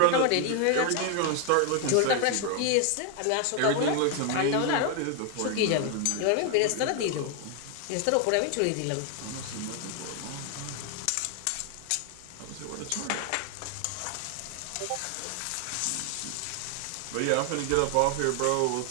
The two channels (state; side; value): different; both; correlation 0.01